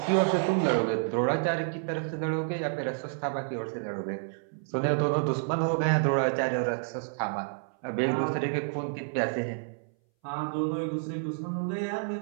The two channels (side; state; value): left; silent; 58 dB below the other